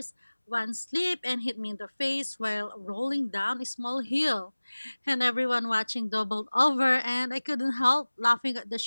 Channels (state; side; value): inverted; both; correlation -1.00